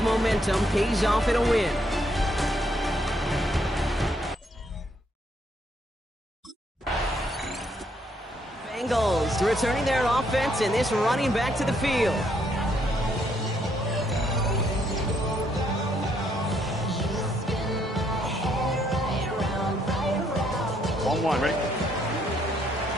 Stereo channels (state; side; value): normal; both; correlation 0.72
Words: momentum pays off in a win. Bengals returning their offense and this running back to the field. 1-1, ready?